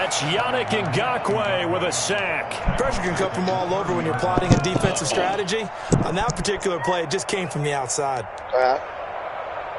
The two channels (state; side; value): identical; both; correlation 1.00